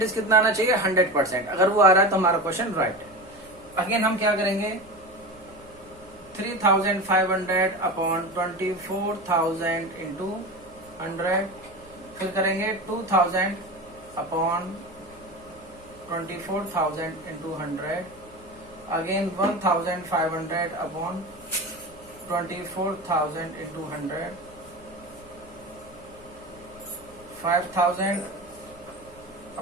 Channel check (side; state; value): right; noise; hum, 25 dB below the sound